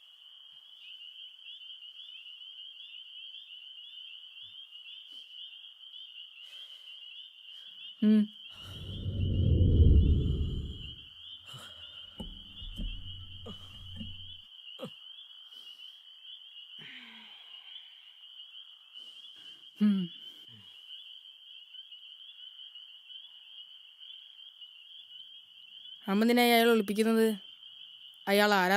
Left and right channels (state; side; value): identical; both; correlation 1.00